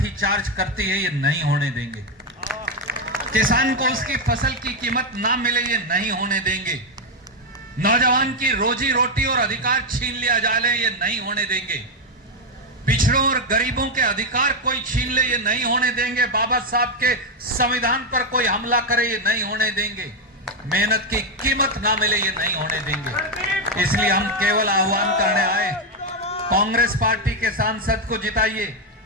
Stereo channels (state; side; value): normal; both; correlation 0.05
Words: करती है। ये नहीं होने देंगे। किसान को उसकी फसल की कीमत ना मिले, ये नहीं होने देंगे। नौजवान की रोजी रोटी और अधिकार छीन लिया जाए, ये नहीं होने देंगे। पिछड़ों और गरीबों के अधिकार कोई छीन ले, ये नहीं होने देंगे। बाबा साहब के संविधान पर कोई हमला करे, ये नहीं होने देंगे। मेहनत की कीमत ना मिले, ये नहीं होने देंगे। इसलिए हम केवल आह्वान करने आए, कांग्रेस पार्टी के सांसद को जिताइए,